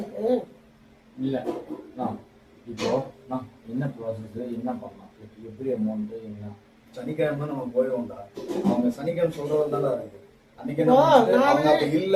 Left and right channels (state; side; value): identical; both; correlation 1.00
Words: இல்ல இப்போ என்ன ப்ராசஸ் என்ன பண்ணலாம், எப்படி அமௌண்ட் என்ன? சனிக்கிழமை நம்ம போயிடுவோம்டா. அவங்க சனிக்கிழமை சொல்றதுனால